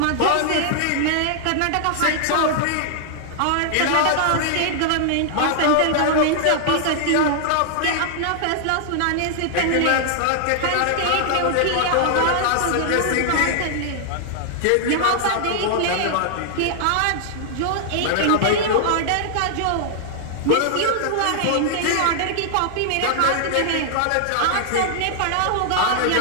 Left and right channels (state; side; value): different; both; correlation -0.01